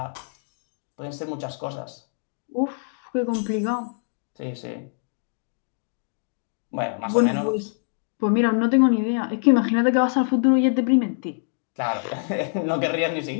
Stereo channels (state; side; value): silent; right; 62 dB below the other